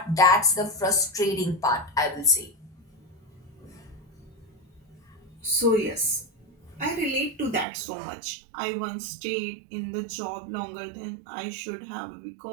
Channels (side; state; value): left; drops out; at 7.7 s